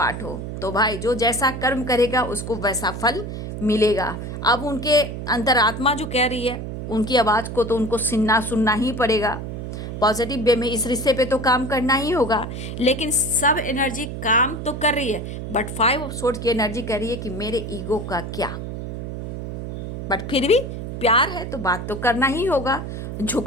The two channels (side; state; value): right; noise; hum, 7 dB below the sound